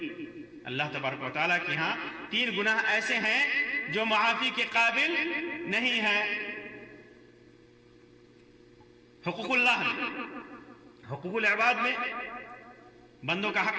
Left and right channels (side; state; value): both; identical; correlation 1.00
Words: اللہ تبارک و تعالیٰ کے ہاں تین گناہ ایسے ہیں جو معافی کے قابل نہیں ہیں. حقوق اللہ میں، حقوق العباد میں بندوں کا